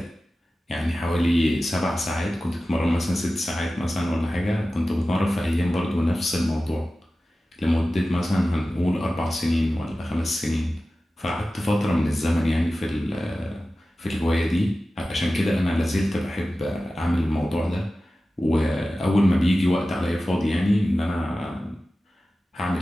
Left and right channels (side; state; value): both; normal; correlation 0.95